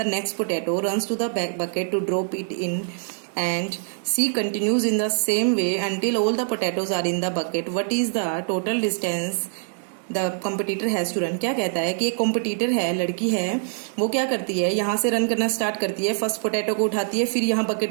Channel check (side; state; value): left; silent; digital silence